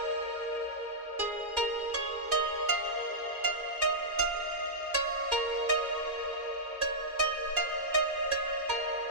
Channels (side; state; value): left; late; 2.4 ms